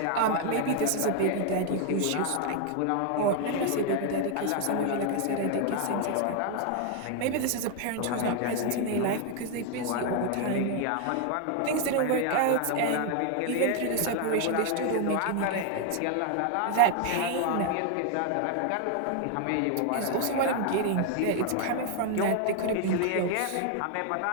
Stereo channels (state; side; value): different; both; correlation 0.00